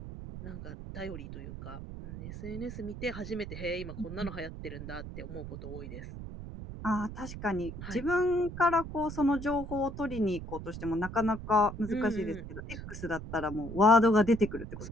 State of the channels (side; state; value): right; noise; rumble, 9 dB below the sound